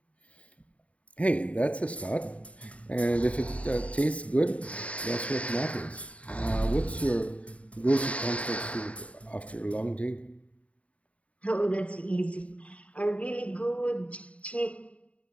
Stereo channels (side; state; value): right; late; 0.065 ms